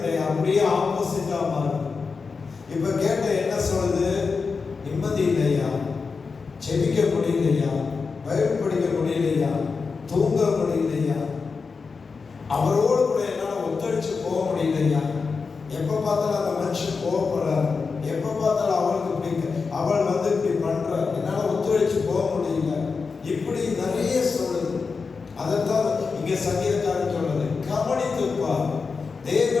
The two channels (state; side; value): quieter; right; 4.9 dB